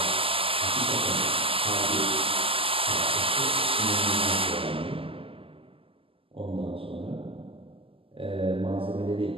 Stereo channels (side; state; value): left; late; 0.26 ms